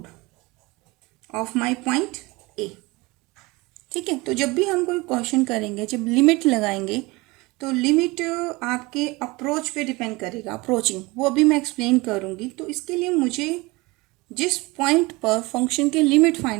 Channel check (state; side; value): quieter; left; 23.4 dB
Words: of my point ए. ठीक है. तो जब भी हम कोई क्वेश्चन करेंगे, जब लिमिट लगाएंगे तो लिमिट आपके अप्रोच पे डिपेंड करेगा. अप्रोचिंग वो अभी मैं एक्सप्लेन करूँगी. तो इसके लिए मुझे जिस पॉइंट पर फंक्शन की लिमिट